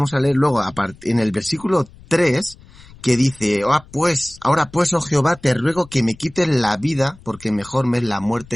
a leer luego en el versículo 3 que dice, ahora pues, oh Jehová, te ruego que me quites la vida, porque mejor me es la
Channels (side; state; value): left; noise; rumble, 23 dB below the sound